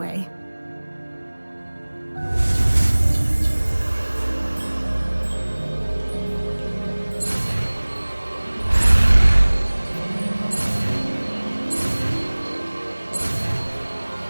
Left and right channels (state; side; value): inverted; both; correlation -1.00